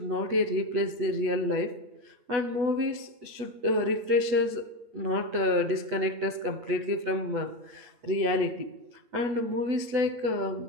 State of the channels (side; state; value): left; late; 8.1 ms